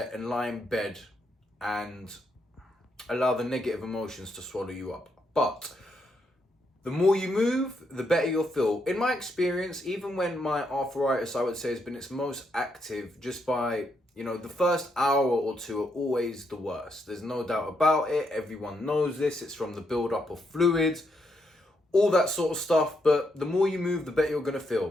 and lie in bed and allow the negative emotions to swallow you up. But the more you move, the better you'll feel. In my experience, even when my arthritis, I would say, has been its most active, just by, the first hour or 2 are always the worst. There's no doubt about it. Everyone knows this. It's from the buildup of fluids, all that sort of stuff. But the more you move, the better you're going to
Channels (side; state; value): both; normal; correlation 0.78